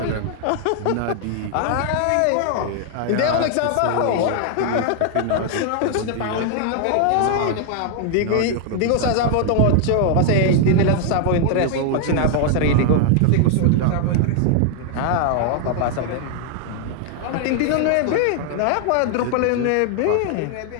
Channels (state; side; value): different; both; correlation 0.00